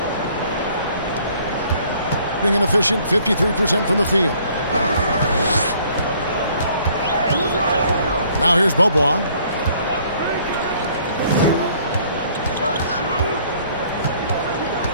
Being an efficient 53% from the field. Now here's Bobois.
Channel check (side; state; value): both; inverted; correlation -0.60